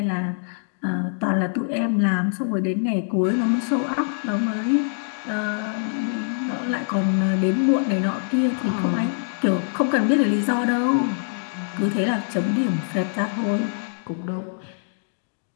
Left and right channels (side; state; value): right; silent; digital silence